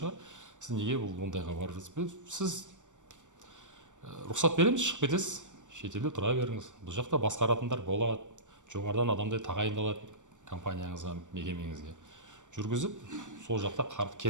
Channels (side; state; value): left; late; 0.85 ms